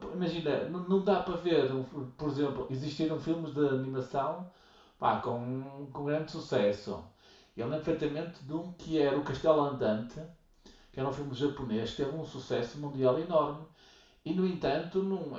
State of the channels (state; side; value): identical; both; correlation 1.00